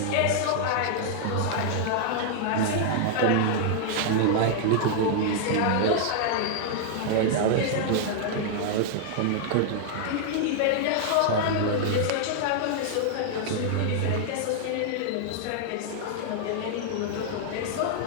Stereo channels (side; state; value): both; different; correlation -0.01